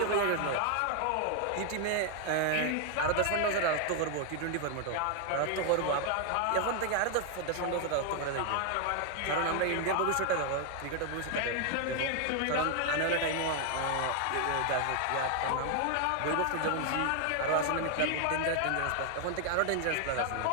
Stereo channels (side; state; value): both; different; correlation 0.00